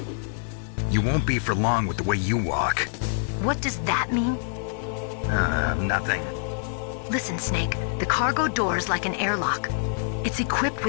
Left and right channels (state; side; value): silent; right; 61 dB below the other